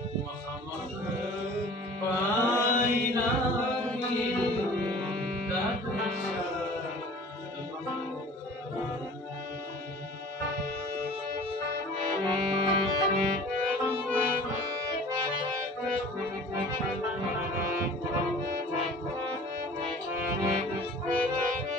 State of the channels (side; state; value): both; normal; correlation 0.45